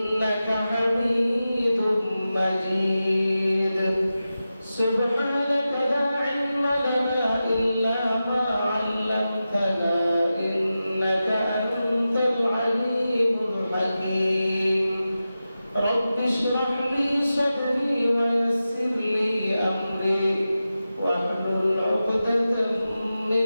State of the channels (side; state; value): both; inverted; correlation -0.93